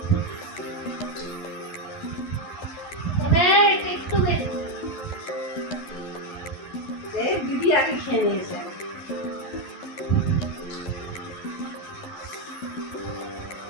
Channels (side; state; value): right; late; 11 ms